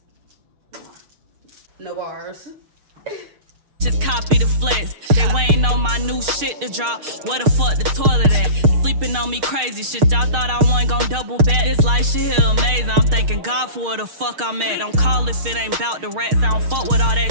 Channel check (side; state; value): left; late; 6.5 ms